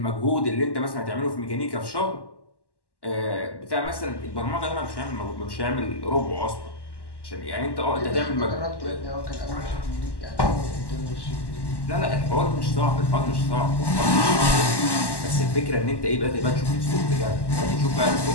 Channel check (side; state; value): right; late; 1.1 ms